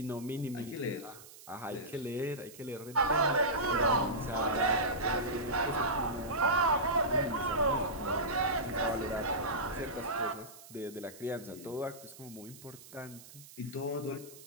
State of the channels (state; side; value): noise; right; hiss, 18 dB below the sound